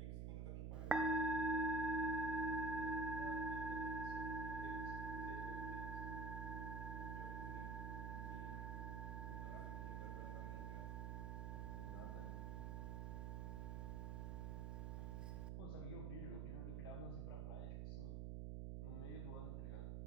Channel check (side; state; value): right; noise; hum, 2 dB below the sound